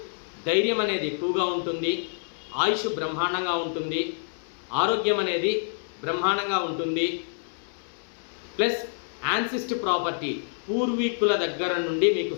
ధైర్యం అనేది ఎక్కువగా ఉంటుంది, ఆయుష్ బ్రహ్మాండంగా ఉంటుంది, ఆరోగ్యం అనేది బ్రహ్మాండంగా ఉంటుంది. ప్లస్ యాన్సిస్ట్ ప్రాపర్టీ, పూర్వీకుల దగ్గర నుండి మీకు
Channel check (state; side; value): silent; right; 60 dB below the other